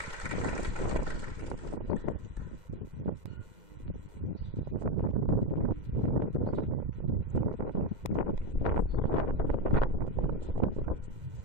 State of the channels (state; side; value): late; left; 2.0 ms